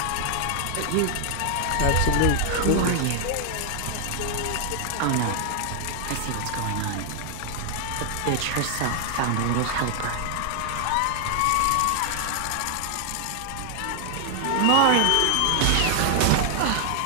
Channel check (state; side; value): different; both; correlation 0.00